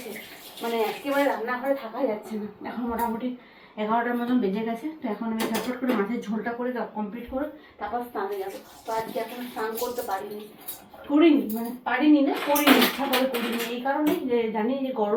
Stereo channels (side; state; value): both; identical; correlation 1.00